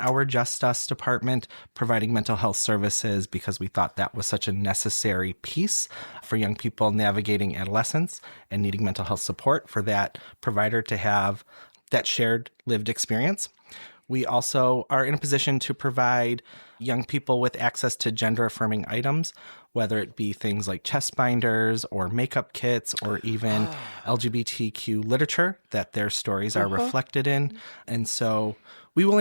Just Us department providing mental health services because we thought that was such a necessary piece for young people navigating adolescence and needing mental health support, for that provider to have that shared lived experience. We also are in a position to provide young people with access to gender-affirming items, whether it be things like chest binders or makeup kits or even LGBTQ literature that their stories are reflected in. And so we will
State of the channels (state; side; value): inverted; both; correlation -1.00